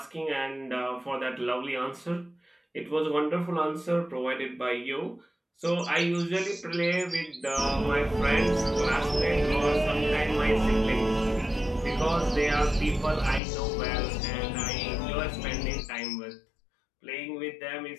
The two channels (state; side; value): drops out; right; at 13.4 s